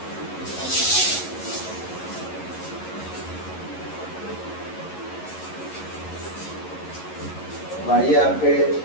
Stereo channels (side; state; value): right; late; 11 ms